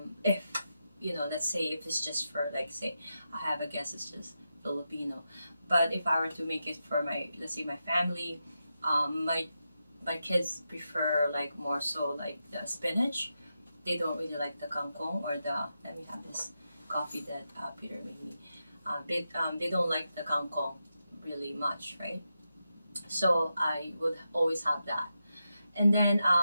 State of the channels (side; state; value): both; inverted; correlation -0.88